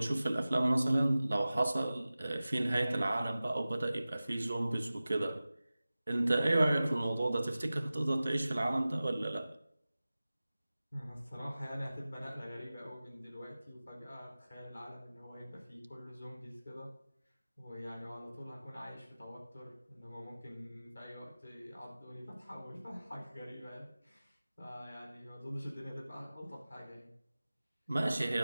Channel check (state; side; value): inverted; both; correlation -0.97